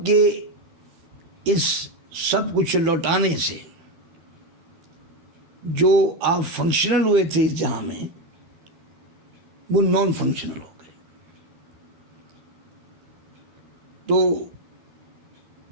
کے اس سب کچھ لوٹانے سے جو آپ فنکشنل ہوئے تھے اس جہاں میں، وہ نان فنکشنل ہو گئے۔ تو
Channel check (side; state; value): left; late; 12 ms